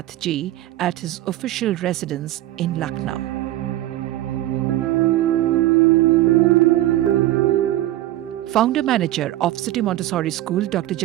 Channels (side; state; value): left; quieter; 15.1 dB